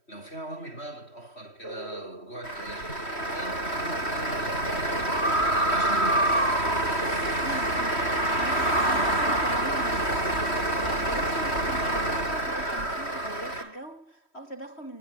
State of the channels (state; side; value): late; right; 3.1 ms